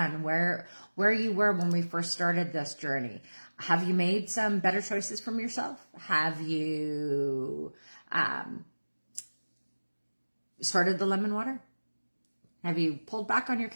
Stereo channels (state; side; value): inverted; both; correlation -1.00